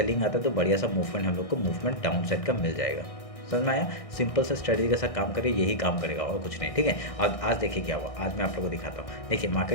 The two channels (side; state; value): right; late; 1.6 ms